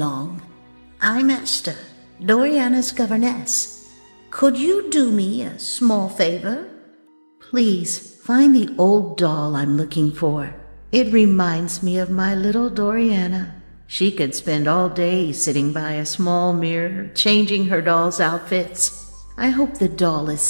I'm Esther, Doriana's governess. Could you do me a small favor? Please find the old doll I'm looking for. It reminds me of my little Doriana. She could spend all day sitting by a small mirror, changing her doll's outfits. I hope the doll is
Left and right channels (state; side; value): inverted; both; correlation -1.00